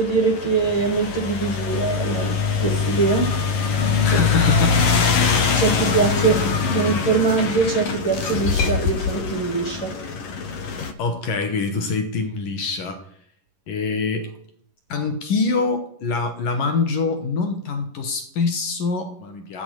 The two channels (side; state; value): right; late; 11 ms